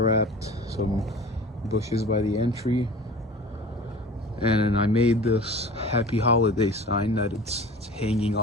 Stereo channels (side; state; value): both; normal; correlation 0.40